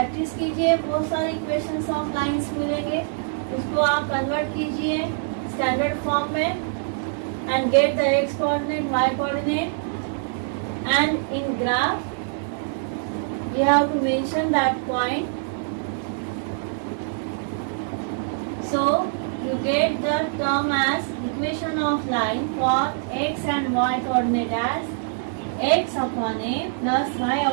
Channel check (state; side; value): silent; left; digital silence